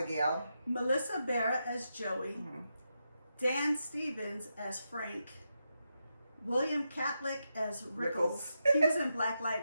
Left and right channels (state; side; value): inverted; both; correlation -0.86